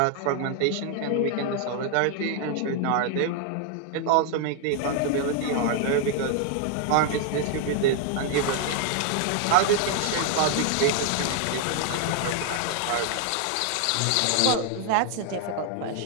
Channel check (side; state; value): both; different; correlation 0.00